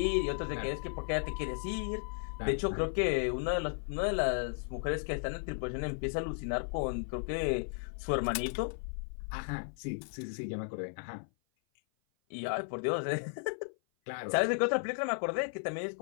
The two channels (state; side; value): silent; right; 55 dB below the other